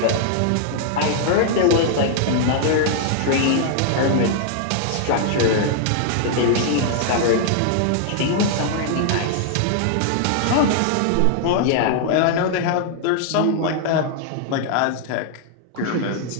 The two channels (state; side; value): different; both; correlation -0.01